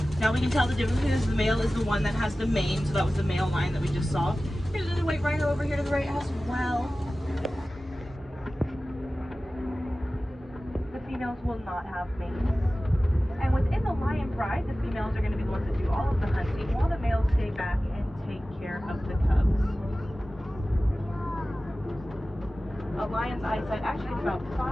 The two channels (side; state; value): both; normal; correlation 0.96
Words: Now we can tell the difference because the male is the one that has the mane, so that was the male lion that we just saw. Here's another white rhino over here to the right as well. females will not have mates. And within the lion pride, the females are going to be the ones that do all of the hunting, while the males stay back and take care of the cubs. A lion's eyesight actually gets about